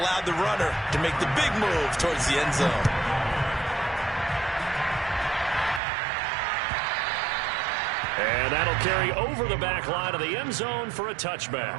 the runner to make the big move towards the end zone. And that'll carry over the back line of the end zone for a touchback.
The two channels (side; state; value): left; drops out; at 5.8 s